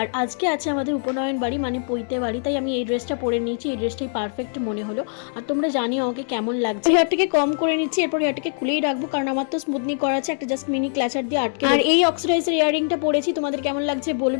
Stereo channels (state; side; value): silent; right; digital silence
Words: আজকে আছে আমাদের উপনয়ন বাড়ি মানে পৈতে বাড়ি, তাই আমি এই ড্রেসটা পরে নিয়েছি। এই ড্রেসটাই পারফেক্ট মনে হলো। আর তোমরা জানিও আমাকে কেমন লাগছে। হেয়ারটাকে কম করে নিচ্ছি, এরপর হেয়ারটাকে খুলেই রাখবো কারণ আমার তো স্মুথনিং করা আছে, একটা জাস্ট মিনি ক্লাচার দিয়ে আটকে। আর এই অক্সিডাইজের ইয়ারিংটা পরেছি, তোমাদের কেমন লাগছে